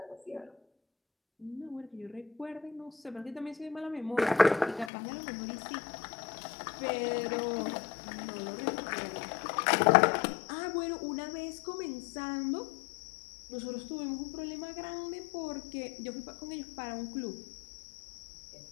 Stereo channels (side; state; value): right; drops out; at 4.9 s